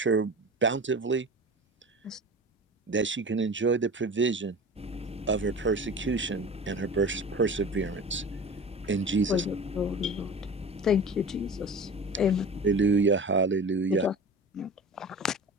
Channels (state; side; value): normal; both; correlation 0.35